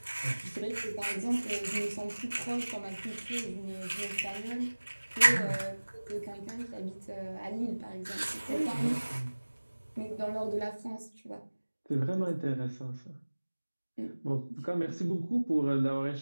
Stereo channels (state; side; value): inverted; both; correlation -1.00